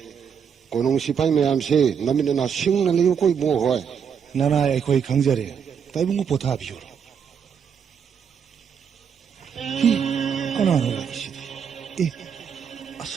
कोनुंग सिपाई मयाम से नमिना सिंग न लियो कोई बो होय नाना एखोई खंगजरे ताइबुंगु पोथा बियो हि कनानो लाइसि ए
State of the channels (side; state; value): left; quieter; 7.3 dB